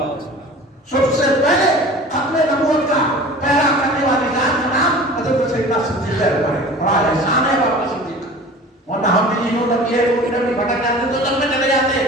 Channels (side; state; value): both; normal; correlation 0.41